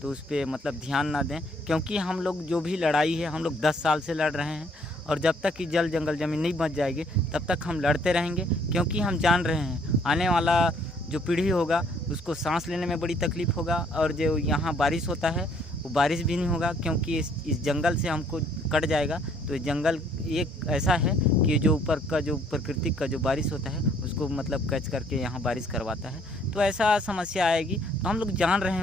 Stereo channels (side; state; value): both; normal; correlation 0.63